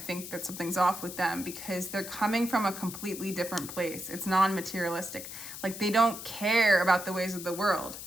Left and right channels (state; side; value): noise; left; hiss, 10 dB below the sound